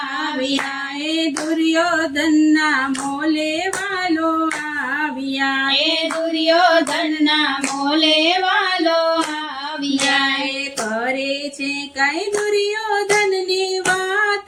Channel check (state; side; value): identical; both; correlation 1.00